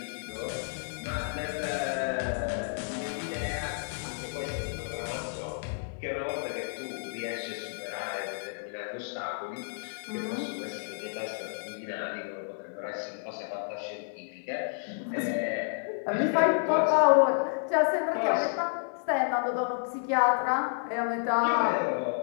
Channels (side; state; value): right; silent; 57 dB below the other